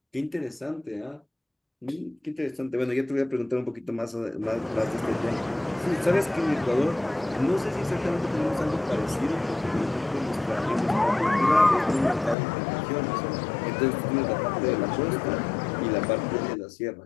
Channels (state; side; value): drops out; right; at 12.4 s